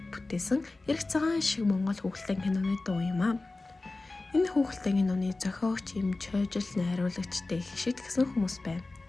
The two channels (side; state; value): right; quieter; 3.2 dB